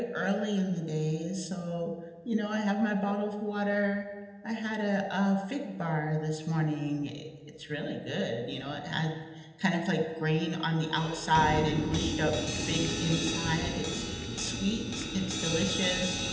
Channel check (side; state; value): both; identical; correlation 1.00